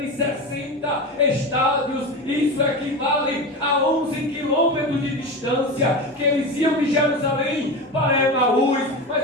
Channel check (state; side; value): normal; both; correlation 0.23